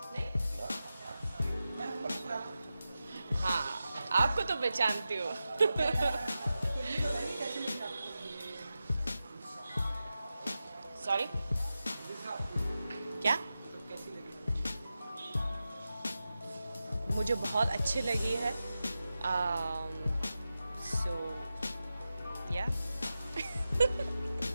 नहीं? हाँ, आपको तो पहचानती हूँ। तो ये बताइए कैसे लगी आपको ये सॉरी, वीज़ा आपको क्या? तो कैसी लगी? मुझे बहुत अच्छी लगी है। So, yeah.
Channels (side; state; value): both; inverted; correlation -0.92